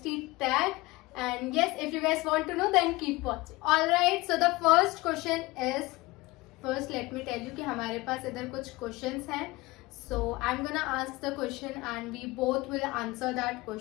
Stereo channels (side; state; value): right; quieter; 21.5 dB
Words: tag, and yes, if you guys want to know then keep watching. Alright, so the first question is, first let me tell you कि हमारे पास इधर कुछ questions हैं. So I'm gonna ask the question and we both will answer that